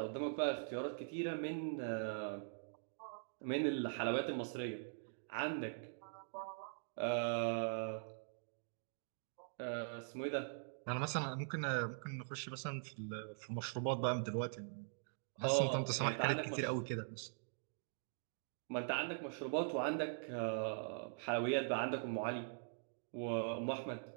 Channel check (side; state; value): left; silent; digital silence